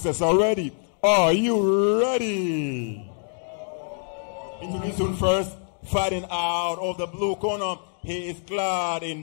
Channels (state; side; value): silent; right; 62 dB below the other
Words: are ready. Are you ready? Introducing first, fighting out of the blue corner. He is clad